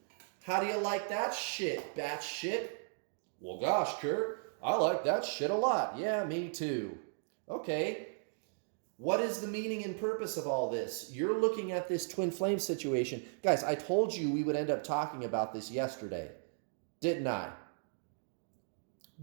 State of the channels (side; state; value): left; silent; digital silence